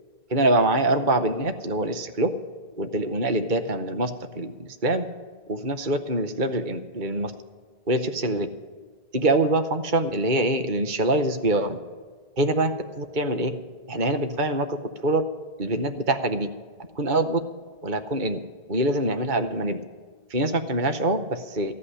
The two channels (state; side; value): late; left; 2.2 ms